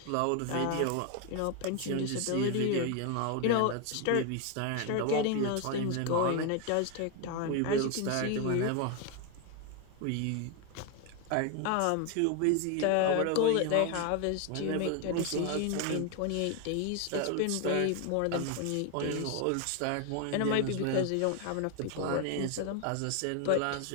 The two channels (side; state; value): both; different; correlation 0.01